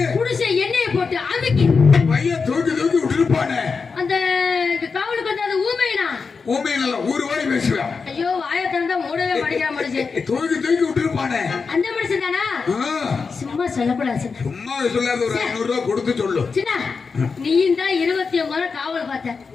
குடிசை எண்ணெயை போட்டு அமுக்கி பையன் தூக்கி தூக்கி விட்டுருப்பானே. அந்த காவலுக்கு வந்து அது ஊமைனா ஊமையில ஊரு வாடி பேசுவேன். ஐயோ வாயை திறந்தா மூடவே மாட்டேங்கிற மனுஷன். தூக்கி தூக்கி விட்டுருப்பானே. அந்த மனுஷன் தானா? சும்மா சொல்லக்கூடாது சின்ன. சும்மா சொல்லாத ஒரு 500 ரூபாய் கொடுத்து சொல்லு. சின்ன நீயும் தான் 29 முறை காவல் பார்த்த.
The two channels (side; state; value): right; quieter; 5.0 dB